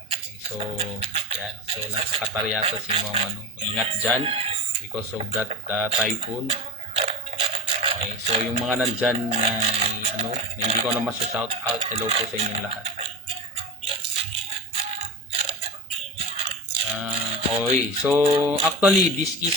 So, yan. So, nasa Qatar yata si Ma'am Ingat dyan because of that typhoon. Okay, so yung mga nandyan na hindi ko na shout out, hello po sa inyong lahat. Okay, so actually this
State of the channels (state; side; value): normal; both; correlation 0.25